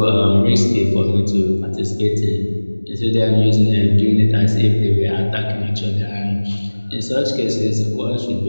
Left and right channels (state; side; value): inverted; both; correlation -1.00